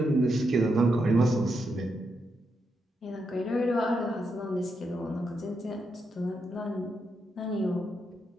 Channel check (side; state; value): both; normal; correlation 0.83